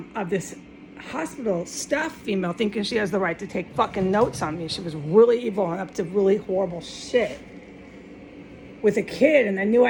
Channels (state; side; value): identical; both; correlation 1.00